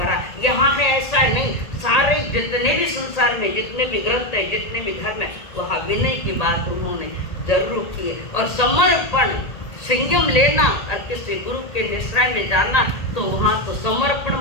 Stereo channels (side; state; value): right; late; 1.8 ms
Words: यहाँ है ऐसा नहीं, सारे जितने भी संसार में जितने भी ग्रंथ है, जितने भी धर्म है, वहाँ विनय की बात उन्होंने जरूर की है। और समर्पण, संयम लेना और किसी गुरु के निश्रय में जाना, तो वहाँ तो समर्पण